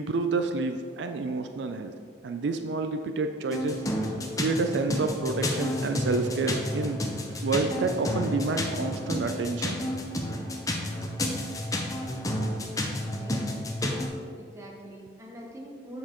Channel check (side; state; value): both; normal; correlation 0.44